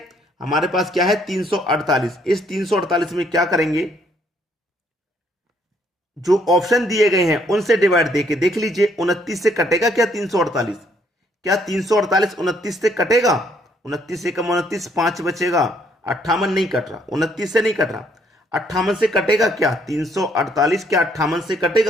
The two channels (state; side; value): normal; both; correlation 0.67